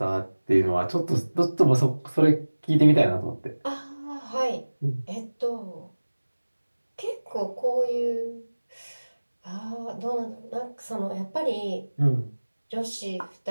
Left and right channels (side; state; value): both; inverted; correlation -1.00